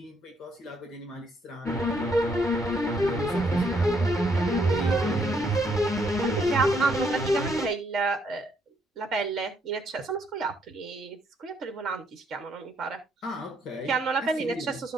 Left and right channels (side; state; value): both; normal; correlation 0.71